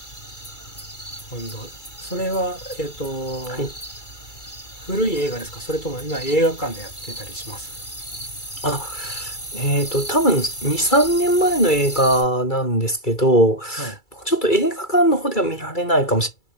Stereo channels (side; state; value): right; late; 2.3 ms